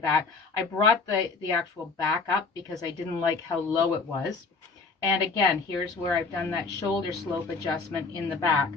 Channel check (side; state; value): right; quieter; 4.4 dB